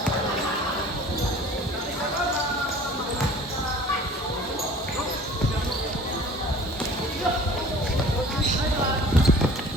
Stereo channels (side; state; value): both; normal; correlation 0.46